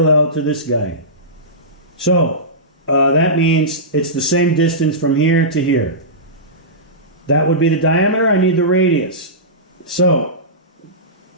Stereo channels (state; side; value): normal; both; correlation -0.18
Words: to this guy. So that means it's the same distance from here to here. That would be the diameter. I need the radius. So